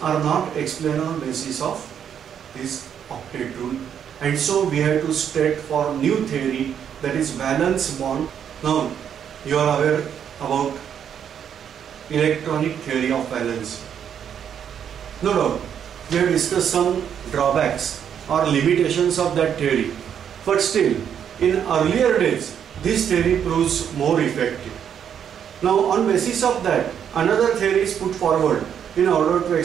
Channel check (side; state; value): left; quieter; 8.6 dB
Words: are not explained on basis of this octet rule, and so we have to state for new theory, that is valence bond. Now you are aware about electronic theory of valence. No doubt we have discussed some drawbacks or limitations of that theory, but still in earlier days this theory proves more effective. Now on basis of that, another theory is put forward in order to